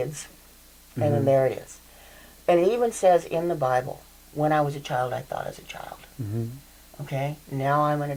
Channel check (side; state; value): both; identical; correlation 1.00